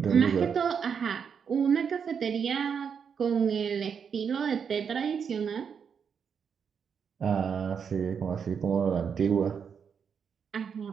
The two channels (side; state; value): left; quieter; 6.8 dB